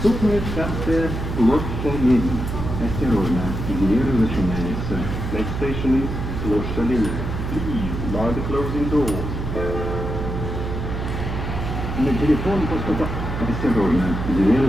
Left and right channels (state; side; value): noise; right; hum, 4 dB below the sound